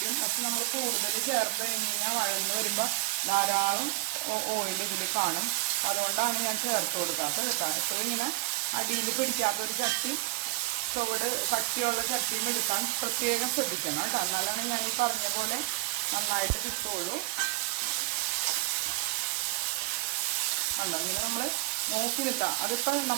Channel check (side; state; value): left; quieter; 21.4 dB